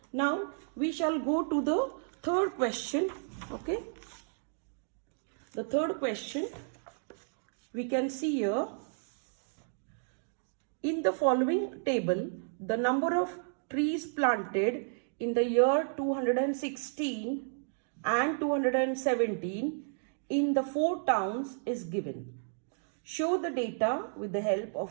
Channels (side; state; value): left; silent; digital silence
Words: Now we shall go to the third question. Okay, the third question we can see here. In the following table, the number of trees planted in the year 216 and 217 in the 4 towns is given. Show the data with the help